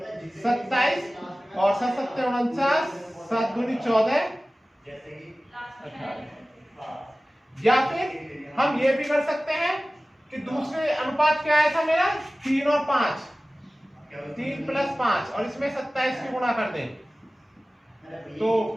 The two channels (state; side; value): normal; both; correlation 0.97